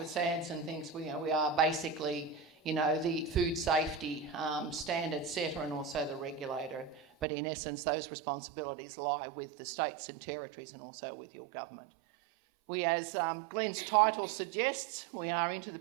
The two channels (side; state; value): left; drops out; at 7.2 s